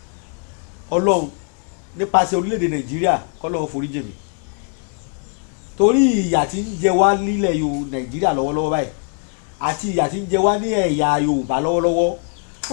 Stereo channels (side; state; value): right; quieter; 39.1 dB